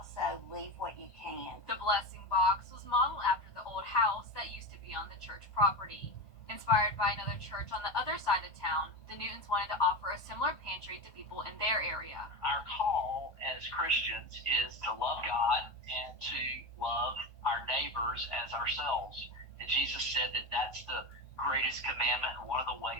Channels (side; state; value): right; late; 1.2 ms